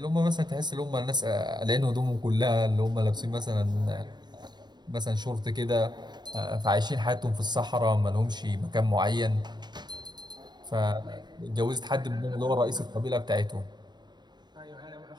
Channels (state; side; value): late; left; 0.21 ms